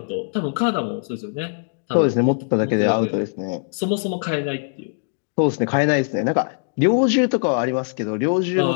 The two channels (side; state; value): right; silent; digital silence